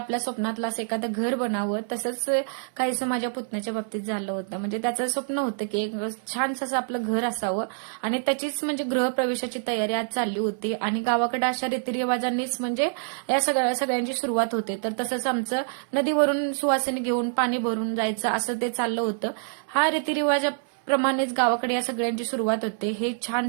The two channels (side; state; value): left; silent; 61 dB below the other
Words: स्वप्नातलं असं एखादं घर बनावं. तसंच काहीसं माझ्या पुतण्याच्या बाबतीत झालं होतं. म्हणजे त्याचं स्वप्न होतं की एक छानसं असं आपलं घर असावं आणि त्याचीच म्हणजे गृहप्रवेशाची तयारी आज चालली होती आणि गावाकडे अशा रीतिरिवाजांनीच म्हणजे या सगळ्यांची सुरुवात होते. तर तसंच आमचं नदीवरून सुवासिनी घेऊन पाणी भरून जायचं असं ते चाललं होतं. हा रीतिरिवाज प्रमाणेच गावाकडे या सगळ्यांची सुरुवात होते. हे